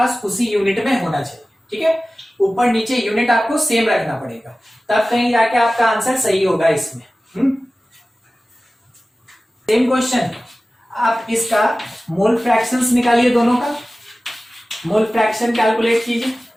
उसी यूनिट में होना चाहिए, ठीक है ऊपर नीचे यूनिट आपको सेम रखना पड़ेगा, तब कहीं जाके आपका आंसर सही होगा इसमें। सेम क्वेश्चन, आप इसका मोल फ्रैक्शंस निकालिए, दोनों का मोल फ्रैक्शन कैलकुलेट कीजिए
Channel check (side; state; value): both; normal; correlation 0.97